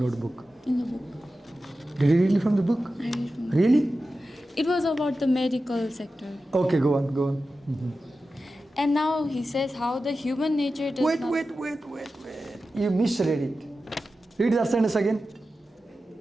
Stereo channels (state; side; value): normal; both; correlation 0.93